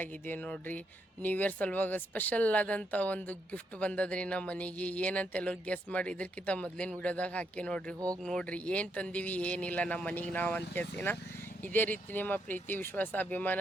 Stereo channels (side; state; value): both; normal; correlation 0.78